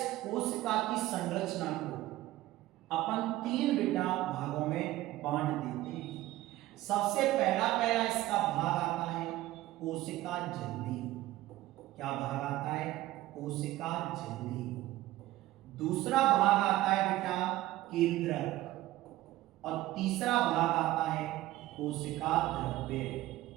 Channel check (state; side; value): quieter; left; 16.3 dB